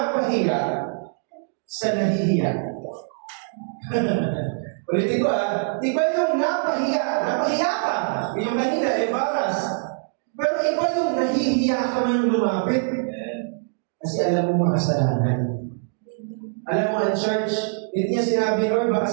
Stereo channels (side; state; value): left; silent; digital silence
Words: sa nahihiya. Ulitin ko iba yung napahiya. Napahiya ka. Yung kanina, embarrassed. Pero iba yung nahihiya ka man lumapit. Kasi alam mo makasalanan. Alam mo, ang church, hindi niya sinabi, Lord,